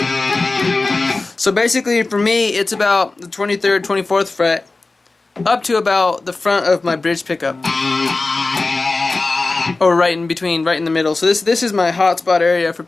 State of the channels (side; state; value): right; quieter; 3.5 dB